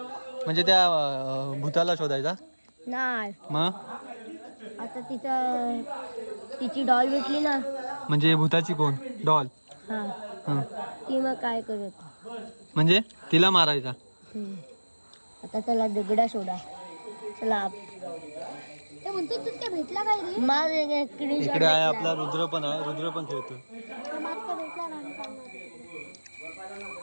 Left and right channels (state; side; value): inverted; both; correlation -1.00